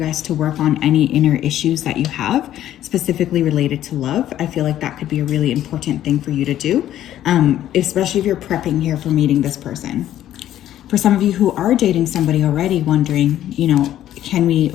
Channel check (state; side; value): quieter; right; 12.2 dB